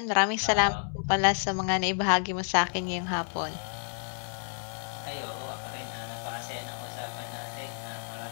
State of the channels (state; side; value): silent; right; 58 dB below the other